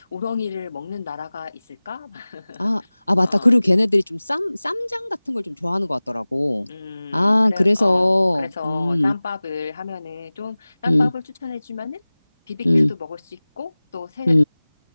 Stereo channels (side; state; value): both; inverted; correlation -0.99